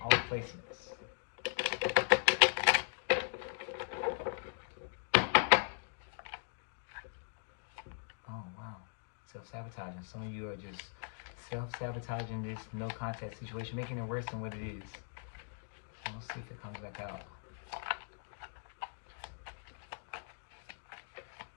placements. Oh wow. Self-sabotaging. Some of you are just self-sabotaging this no contact situation, making it worse than what it is. So let's see if it comes back out.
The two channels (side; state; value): right; silent; digital silence